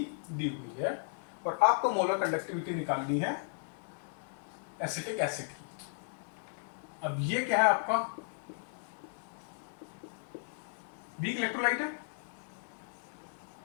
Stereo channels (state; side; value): silent; right; digital silence